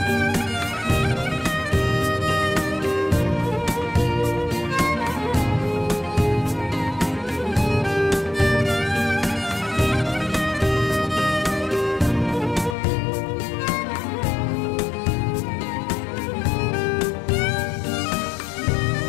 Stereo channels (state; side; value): drops out; right; at 12.8 s